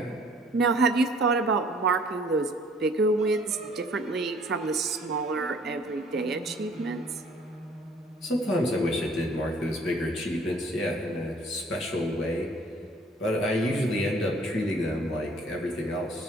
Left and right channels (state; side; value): normal; both; correlation 0.56